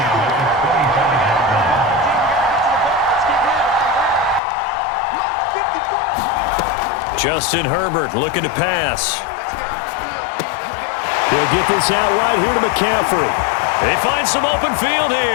Justin Herbert looking to pass. He'll get this out right here to McCaffrey. They find some open field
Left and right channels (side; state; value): right; drops out; at 4.4 s